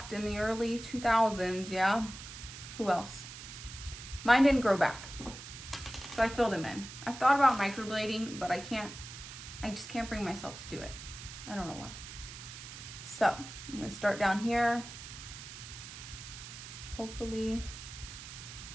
in the early 2000s, yeah? Who else? Mine didn't grow back, so I filled them in. I've thought about microblading, but I just can't bring myself to do it. I don't know why. So I'm gonna start down here. Hopefully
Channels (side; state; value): right; noise; hiss, 12 dB below the sound